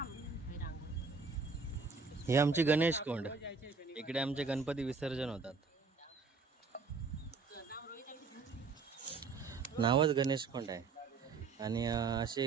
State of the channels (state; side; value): quieter; left; 4.7 dB